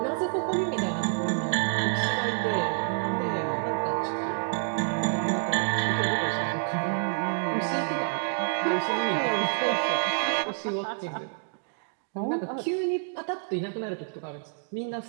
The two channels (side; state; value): left; silent; digital silence